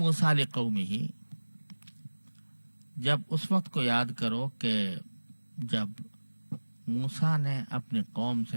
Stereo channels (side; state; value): both; inverted; correlation -1.00